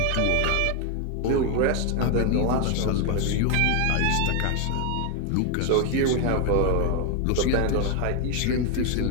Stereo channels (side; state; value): both; different; correlation 0.01